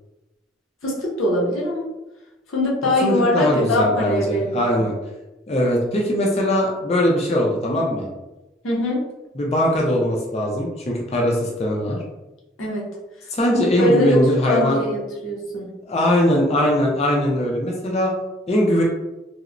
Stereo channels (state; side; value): normal; both; correlation 0.52